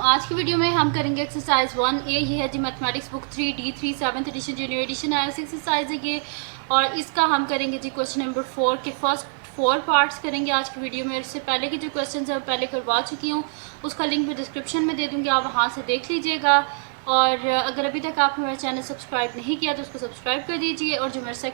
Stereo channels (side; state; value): left; silent; digital silence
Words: आज की वीडियो में हम करेंगे एक्सरसाइज 1A। ये है जी mathematics book 3D3 7th edition junior edition आया एक्सरसाइज है ये, और इसका हम करेंगे जी क्वेश्चन नंबर 4 के फर्स्ट 4 पार्ट्स करेंगे आज की वीडियो में। इससे पहले के जो क्वेश्चन है पहले करवा चुकी हूँ, उसका लिंक मैं डिस्क्रिप्शन में दे दूँगी, आप वहाँ से देख लीजिएगा। और अगर अभी तक आपने मेरा चैनल सब्सक्राइब नहीं किया तो उसको सब्सक्राइब कर दीजिए, और जो मेरा